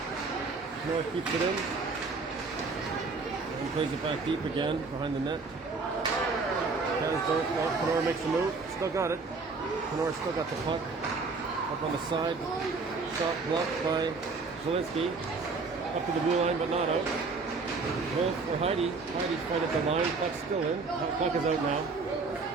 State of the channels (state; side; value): quieter; left; 4.2 dB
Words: Kenora keeps it in. He plays it back deep again behind the net. Kasdorf, well, Kenora makes a move. Still got it. Kenora still got the puck. Up on the side. Shot blocked by Zielinski. Up to the blue line, but not out. Wolf or Heidi. Heidi's fight at the line. Puck's still in. Puck is out now.